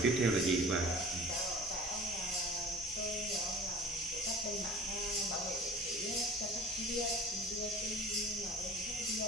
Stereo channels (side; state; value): both; normal; correlation 0.42